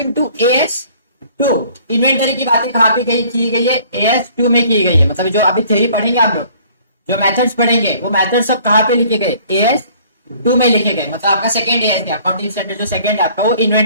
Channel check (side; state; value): both; inverted; correlation -0.55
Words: to as 2. इन्वेंटरी की बातें कहाँ पे की गई है? एएस 2 में की गई है. मतलब जो अभी थ्योरी पढ़ेंगे आप लोग, जो मेथड्स पढ़ेंगे, वो मेथड्स सब कहाँ पे लिखे गए? एएस 2 में लिखे गए. मतलब आपका सेकंड एएस क्या, अकाउंटिंग स्टैंडर्ड जो सेकंड है आपका, वो